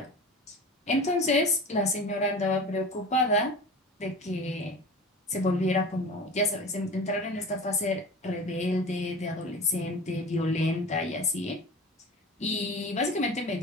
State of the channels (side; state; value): both; normal; correlation 0.35